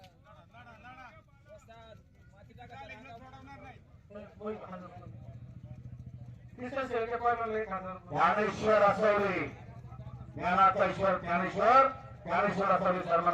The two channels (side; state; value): both; identical; correlation 1.00